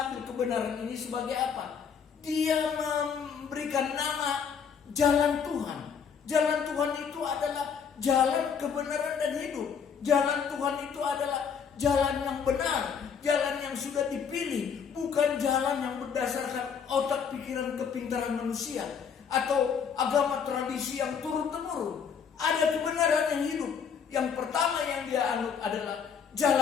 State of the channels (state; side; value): quieter; right; 6.8 dB